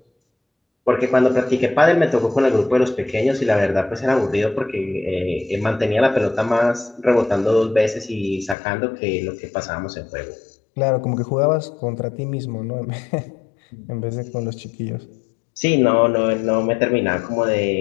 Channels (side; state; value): right; drops out; at 8.6 s